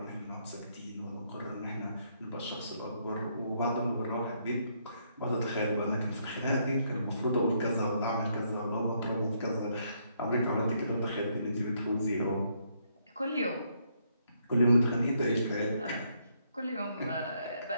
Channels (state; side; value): inverted; both; correlation -0.73